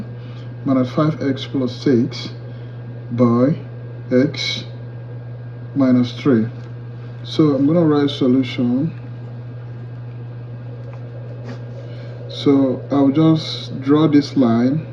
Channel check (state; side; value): identical; both; correlation 1.00